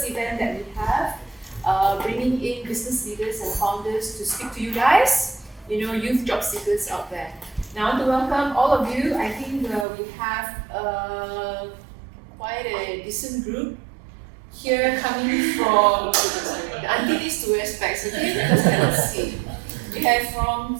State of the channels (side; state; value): left; drops out; at 9.9 s